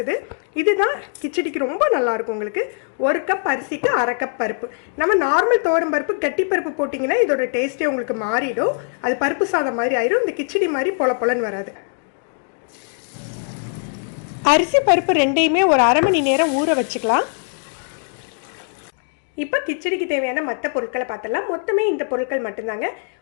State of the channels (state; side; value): silent; right; 61 dB below the other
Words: இதுதான் கிச்சடிக்கு ரொம்ப நல்லாயிருக்கும். உங்களுக்கு ஒரு கப் அரிசிக்கு அரை கப் பருப்பு. நம்ம நார்மல் துவரம்பருப்பு கட்டி பருப்பு போட்டிங்கன்னா இதோட டேஸ்ட்டே உங்களுக்கு மாறிடும். அது பருப்பு சாதம் மாதிரி ஆயிடும். இந்த கிச்சடி மாதிரி பொலன்னு வராது. அரிசி பருப்பு ரெண்டையுமே ஒரு அரை மணி நேரம் ஊற வச்சுக்கலாம். இப்போ கிச்சடிக்கு தேவையான மற்ற பொருட்களை பார்த்தலாம். மொத்தமே இந்த பொருட்கள் மட்டும்தாங்க.